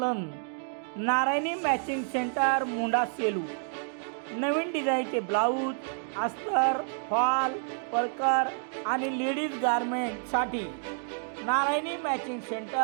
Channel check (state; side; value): silent; left; 58 dB below the other